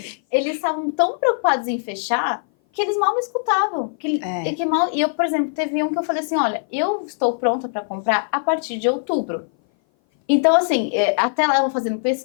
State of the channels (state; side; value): silent; right; 58 dB below the other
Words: Eles estavam tão preocupados em fechar que eles mal me escutavam. E eu, por exemplo, teve um que eu falei assim, olha, eu estou pronta para comprar a partir de outubro. Então, assim, até lá eu vou fazendo